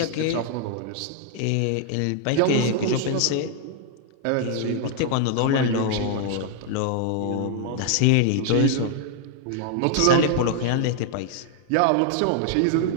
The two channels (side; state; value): both; different; correlation 0.00